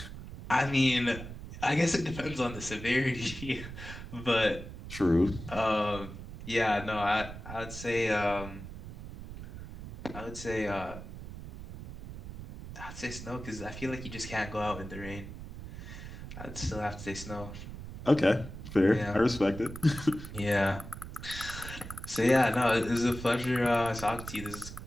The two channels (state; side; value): noise; right; rumble, 11 dB below the sound